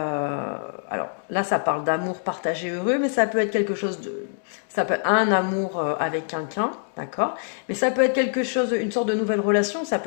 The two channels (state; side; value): silent; right; digital silence